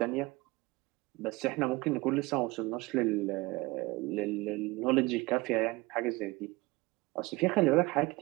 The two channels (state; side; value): quieter; left; 21.9 dB